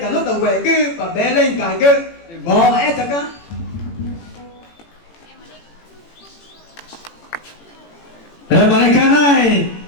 nó tàu về cứ và bé lên cả cứ mò ép chẳng á. Thế mà này cái này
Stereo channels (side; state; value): right; late; 18 ms